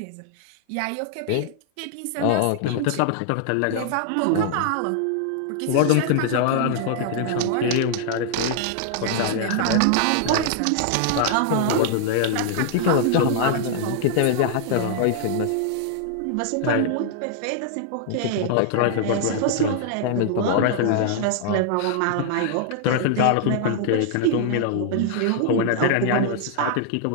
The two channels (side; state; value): both; different; correlation -0.01